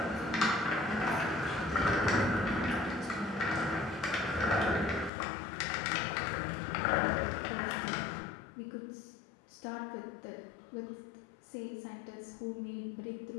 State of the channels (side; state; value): right; drops out; at 5.1 s